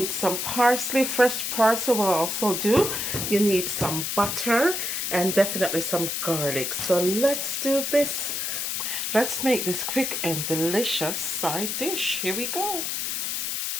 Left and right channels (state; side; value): noise; left; hiss, 2 dB below the sound